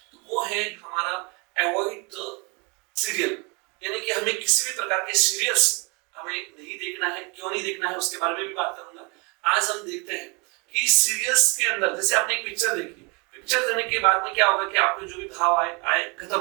तो वो है हमारा अवॉइड द सीरियल, यानी कि हमें किसी भी प्रकार के सीरियल्स हमें नहीं देखना है। क्यों नहीं देखना है उसके बारे में भी बात करूंगा। आज हम देखते हैं कि सीरियल्स के अंदर, जैसे आपने एक पिक्चर देखी, पिक्चर देखने के बाद में क्या होगा कि आपके जो भी भाव आए खत्म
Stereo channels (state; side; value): quieter; left; 31.0 dB